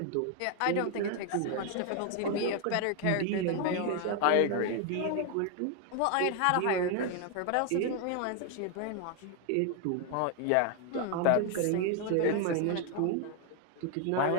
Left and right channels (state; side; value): different; both; correlation 0.00